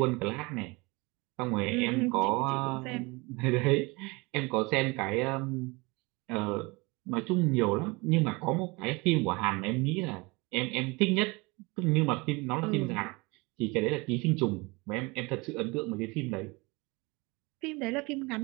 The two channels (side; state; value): left; quieter; 25.7 dB